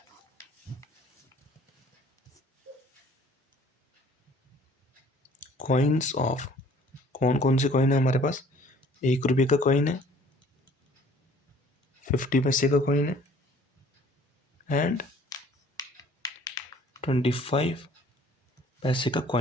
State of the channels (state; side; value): normal; both; correlation 0.54